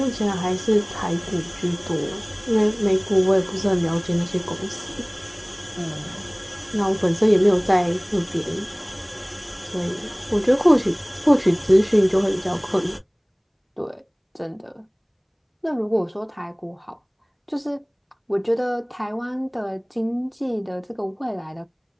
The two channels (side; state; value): both; identical; correlation 1.00